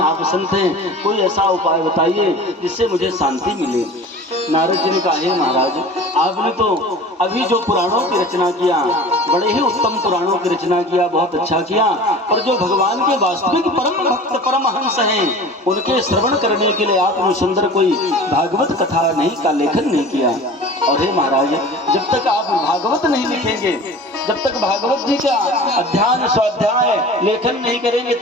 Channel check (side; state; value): both; normal; correlation 0.40